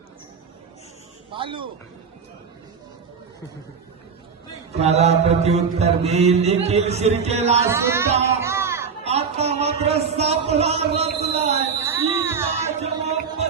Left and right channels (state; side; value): quieter; left; 5.9 dB